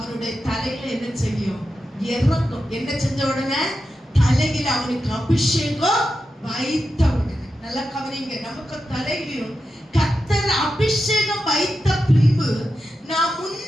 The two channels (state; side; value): normal; both; correlation 0.90